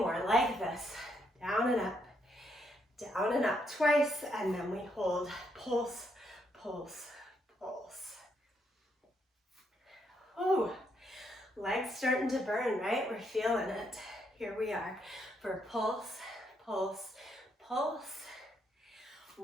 like this. Down and up twice, and then we hold. Pulse, pulse, pulse. Oh, legs starting to burn, right? We're feeling it. Here we are for pulse, pulse, pulse.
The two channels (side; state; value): both; normal; correlation 0.75